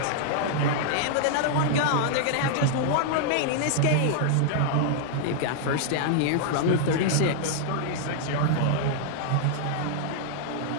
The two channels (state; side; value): different; both; correlation -0.01